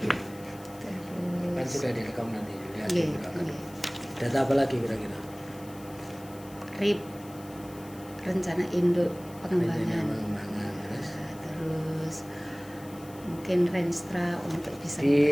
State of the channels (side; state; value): left; noise; hiss, 21 dB below the sound